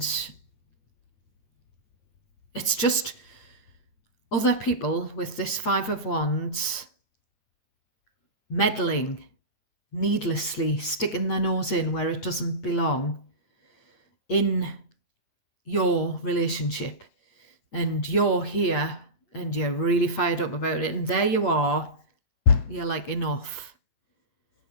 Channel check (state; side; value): late; right; 8.7 ms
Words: it's just other people with this 5 of Wands meddling needlessly, sticking their nose in where it doesn't belong in your relationship. And you're here and you're really fired up about it. And there you are. You're like, enough.